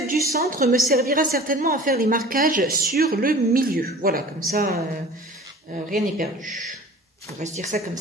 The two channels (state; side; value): normal; both; correlation 0.43